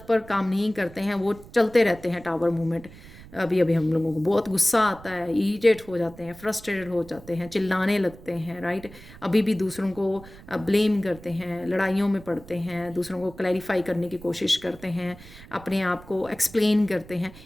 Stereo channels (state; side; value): noise; right; rumble, 19 dB below the sound